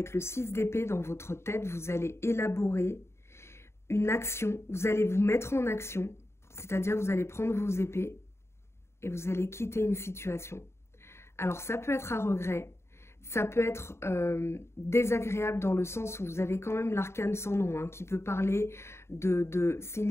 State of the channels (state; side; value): late; right; 0.13 ms